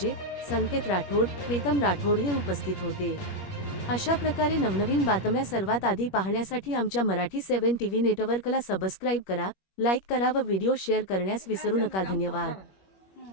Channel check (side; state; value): right; late; 21 ms